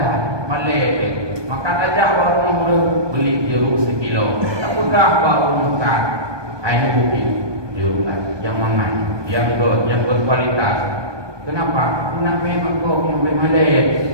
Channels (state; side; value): late; left; 1.2 ms